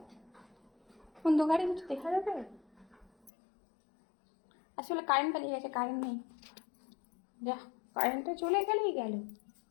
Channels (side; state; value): right; drops out; at 3.3 s